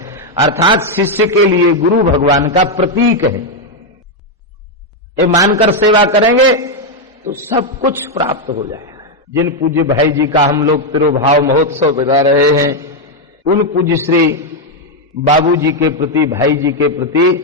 अर्थात शिष्य के लिए गुरु भगवान का प्रतीक है। ये मानकर सेवा करेंगे तो सब कुछ प्राप्त हो जाएगा। जिन पूज्य भाई जी का हम लोग तिरुभाव महोत्सव बिता रहे हैं, उन पूज्य श्री बाबू जी के प्रति, भाई जी के प्रति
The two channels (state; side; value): normal; both; correlation 0.02